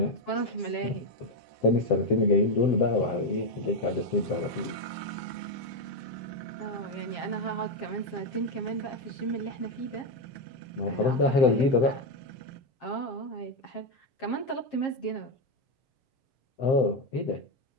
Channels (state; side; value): late; right; 7.5 ms